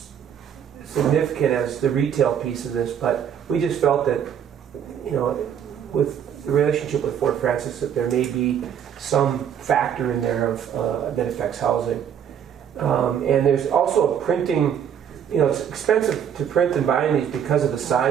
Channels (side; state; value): left; quieter; 8.7 dB